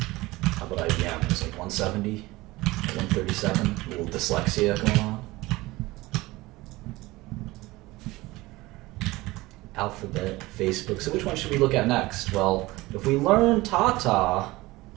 How about IBM? It's like 170, 137. A little dyslexia going on. Alphabet, Facebook. So which one should we look at next? Well, if we learn Tata,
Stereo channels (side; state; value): left; quieter; 20.1 dB